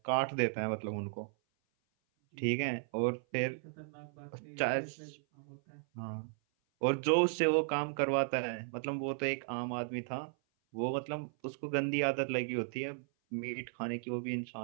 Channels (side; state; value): left; silent; 54 dB below the other